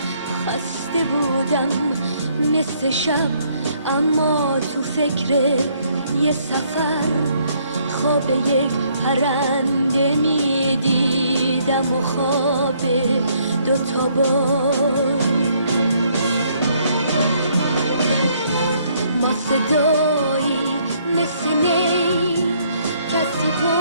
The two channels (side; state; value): both; inverted; correlation -0.67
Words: خسته بودم مثل شب، اما تو فکر یه سفر خواب یک پرنده می دیدم و خواب دوتا بال. ما صدایی مثل نی کسی